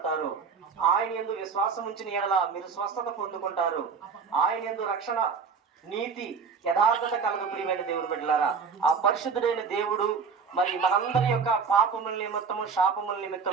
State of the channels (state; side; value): quieter; left; 5.6 dB